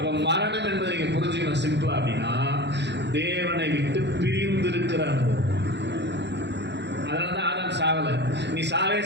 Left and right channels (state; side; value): late; left; 0.50 ms